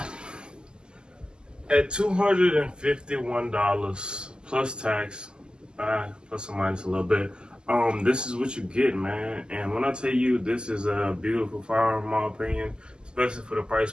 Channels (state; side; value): late; left; 0.047 ms